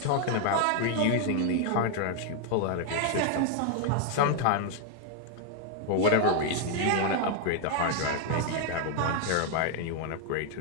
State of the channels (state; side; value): different; both; correlation 0.00